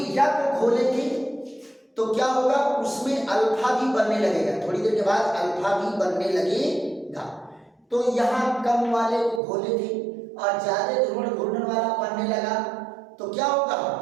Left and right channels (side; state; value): left; drops out; at 9.4 s